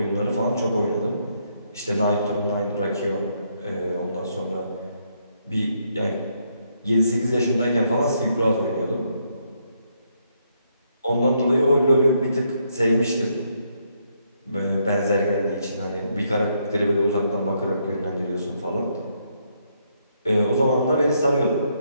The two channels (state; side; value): inverted; both; correlation -0.75